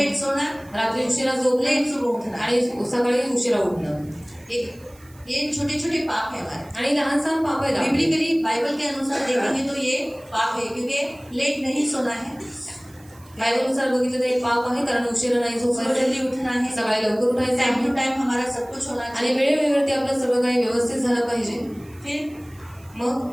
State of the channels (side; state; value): right; noise; hiss, 27 dB below the sound